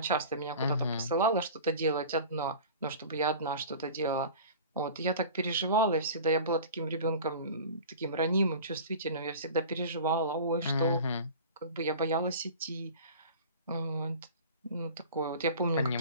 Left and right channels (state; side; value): inverted; both; correlation -0.39